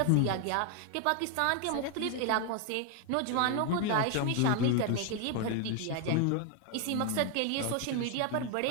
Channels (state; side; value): different; both; correlation 0.00